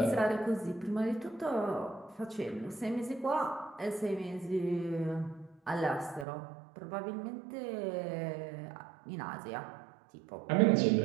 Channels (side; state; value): left; drops out; at 6.2 s